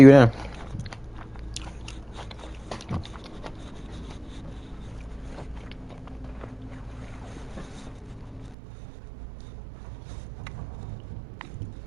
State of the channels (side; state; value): left; drops out; at 8.6 s